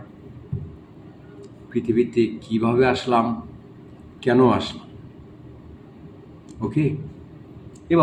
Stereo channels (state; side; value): identical; both; correlation 1.00